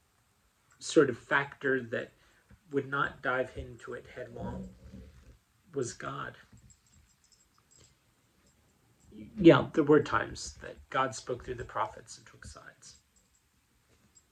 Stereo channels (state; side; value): identical; both; correlation 1.00